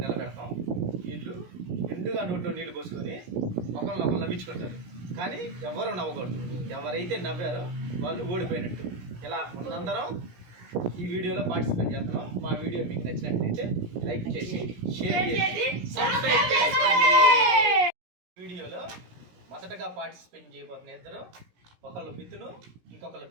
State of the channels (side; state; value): left; late; 17 ms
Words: నిలబెడతాం. వీళ్ళు నిండుగా నోట్లో నీళ్లు పోసుకొని ఒకరు నవ్వించుకుంటారు. కానీ ఎవరు నవ్వకూడదు. ఎవరైతే నవ్వారో వాళ్ళు ఓడిపోయినట్టు. ఇలా మనందరం ఈ వీడియోలో పార్టిసిపేట్ చేస్తున్నాం. మా వీడియో మీకు నచ్చినట్లయితే లైక్ చేసి షేర్ చేసి సబ్స్క్రైబ్ చేసుకోండి. వీడియోలో మొదటగా పార్టిసిపేట్ చేయబోతున్న ఇద్దరు, ఒకళ్ళు మిథును, ఇంకొకళ్ళు